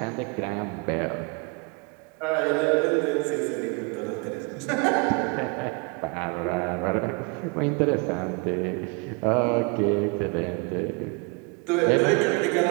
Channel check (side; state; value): left; quieter; 32.4 dB